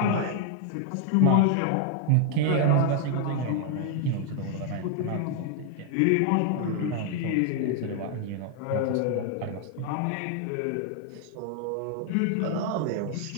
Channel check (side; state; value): both; different; correlation 0.00